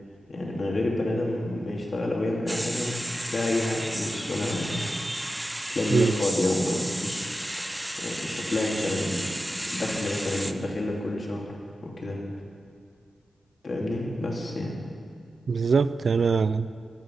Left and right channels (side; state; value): both; normal; correlation 0.91